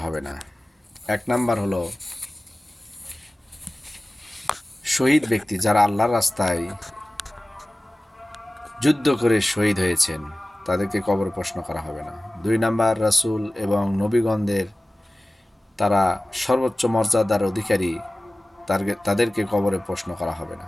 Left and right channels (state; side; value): normal; both; correlation 0.97